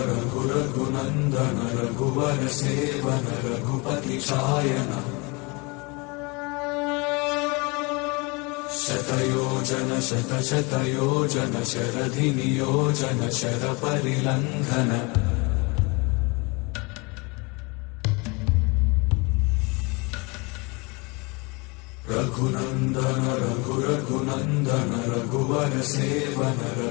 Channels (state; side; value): quieter; right; 28.2 dB